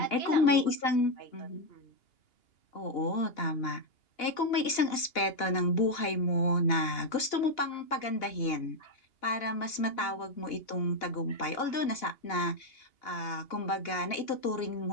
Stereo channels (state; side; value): late; right; 2.8 ms